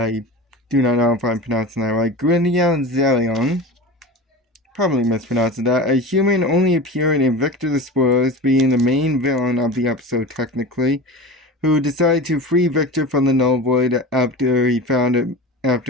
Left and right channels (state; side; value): normal; both; correlation 0.30